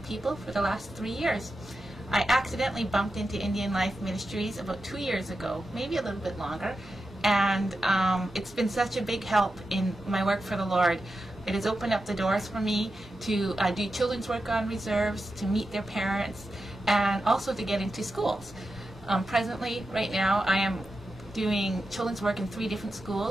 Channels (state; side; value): normal; both; correlation 0.90